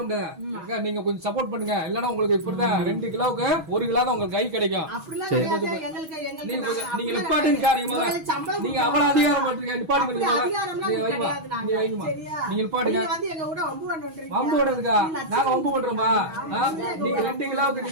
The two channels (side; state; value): left; late; 6.3 ms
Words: முடியாது. நீங்க கொஞ்சம் சப்போர்ட் பண்ணுங்க. இல்லன்னா உங்களுக்கு இப்படிதான் 2 கிலோவுக்கு 1 கிலோ தான் உங்களுக்கு கை கிடைக்கும். நீங்க நிப்பாட்டுங்க. நீங்க அவ்வளவு அதிகாரம் பண்றீங்க. நிப்பாட்டுங்க. நீங்க நிப்பாட்டுங்க. வம்பு பண்றதுக்கா? நாங்க வம்பு பண்றோமா? நீங்க 2 கிலோவுக்கு